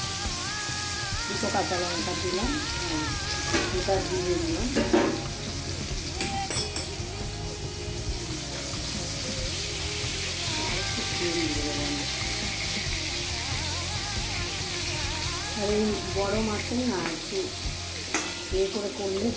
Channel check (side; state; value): both; identical; correlation 1.00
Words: দুটো কাঁচা লঙ্কা দিলাম, দুটা দিয়ে দিলাম। আর এই বড়ো মাছের না একটু ইয়ে করে করলে